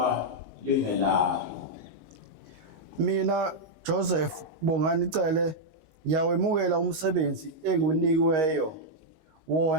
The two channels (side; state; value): left; late; 19 ms